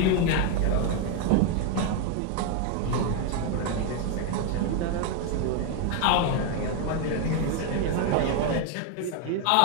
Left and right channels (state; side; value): different; both; correlation 0.01